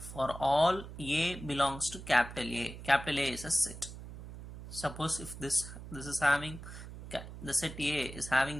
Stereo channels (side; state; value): right; noise; hum, 12 dB below the sound